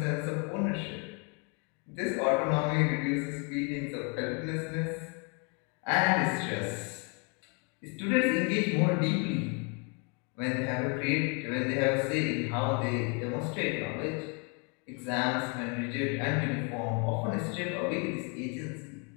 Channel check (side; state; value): right; quieter; 34.2 dB